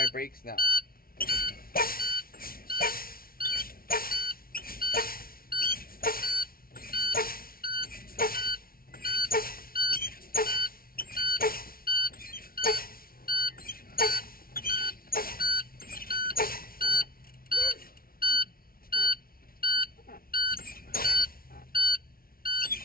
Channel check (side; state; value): right; late; 0.43 ms